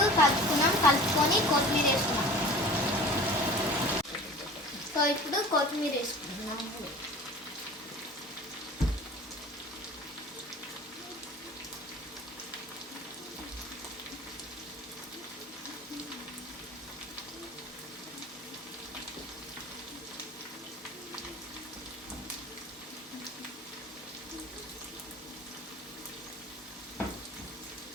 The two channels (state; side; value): normal; both; correlation 0.40